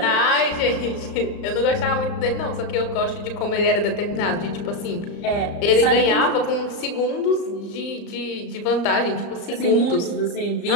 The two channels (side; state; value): right; late; 35 ms